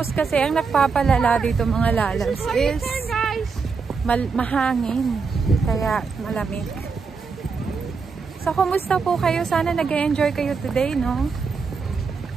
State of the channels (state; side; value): quieter; left; 5.1 dB